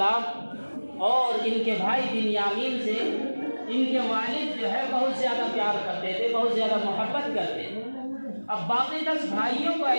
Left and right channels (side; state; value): both; inverted; correlation -1.00